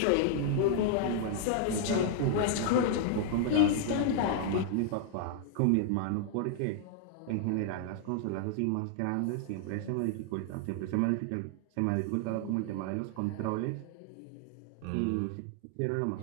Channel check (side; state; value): both; different; correlation 0.00